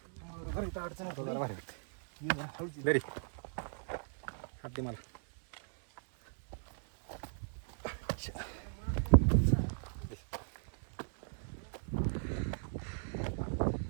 जरा भारी वाटते. दरी हात दे मला.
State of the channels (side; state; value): left; silent; digital silence